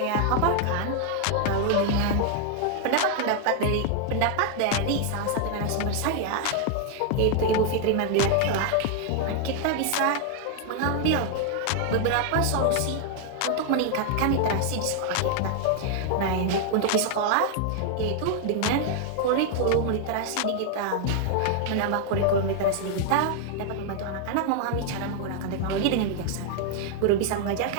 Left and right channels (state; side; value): different; both; correlation 0.00